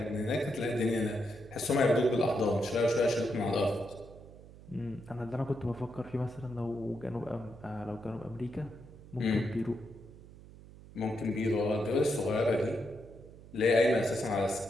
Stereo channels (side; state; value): right; noise; hum, 19 dB below the sound